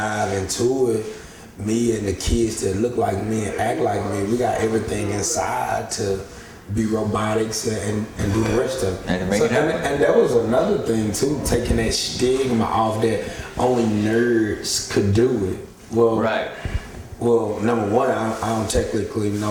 into it, me and the kids that look like me and act like me, we got everything inside to be robotics and do the rest of it. And that was another thing too, taking that stigma off that only nerds could do it. Well, right. Well, number one, I don't technically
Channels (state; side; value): identical; both; correlation 1.00